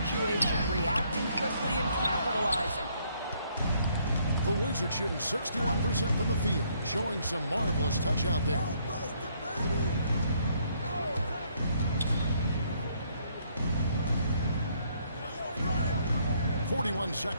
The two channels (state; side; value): inverted; both; correlation -0.68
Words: reacting quickly, and capitalizing. The Wizards shooting 61% from the field, showing some marvelous touch out there. .41